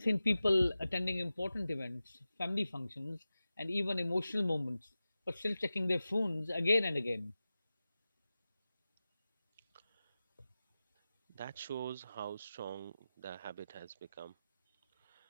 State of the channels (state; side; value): inverted; both; correlation -0.94